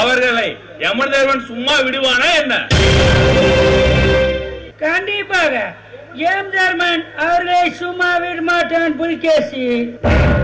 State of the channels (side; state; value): both; identical; correlation 1.00